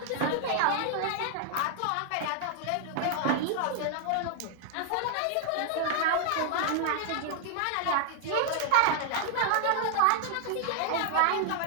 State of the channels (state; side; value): different; both; correlation 0.00